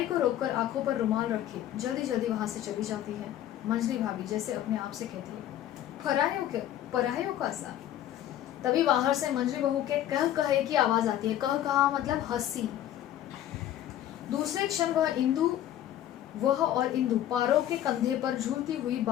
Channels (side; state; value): right; quieter; 12.1 dB